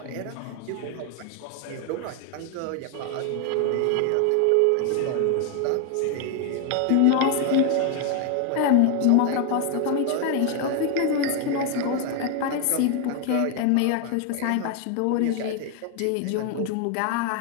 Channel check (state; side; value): different; both; correlation 0.01